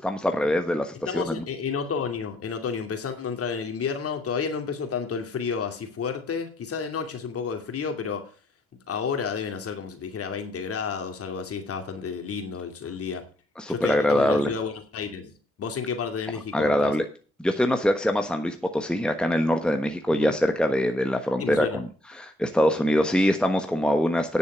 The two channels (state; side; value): normal; both; correlation 0.71